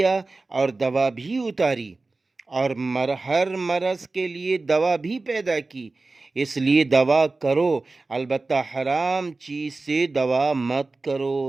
اور دوا بھی اتاری، اور ہر مرض کے لیے دوا بھی پیدا کی، اس لیے دوا کرو، البتہ حرام چیز سے دوا مت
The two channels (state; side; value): quieter; left; 3.5 dB